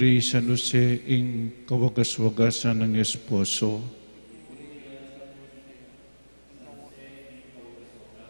San Jose ing kawagas-wagasan ng esposo.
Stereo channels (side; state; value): both; inverted; correlation -1.00